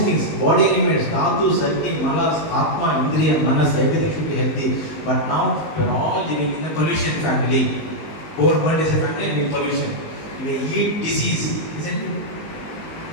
things. Body elements, Dhatus, Agni, Manas, Atma, Indriya, Manas, everything should be healthy. But now we are all living in a pollution family. Whole world is a family and we pollution. We eat disease, isn't it?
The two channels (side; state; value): right; late; 19 ms